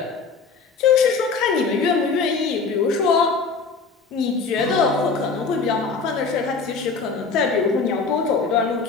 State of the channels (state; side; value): quieter; right; 4.8 dB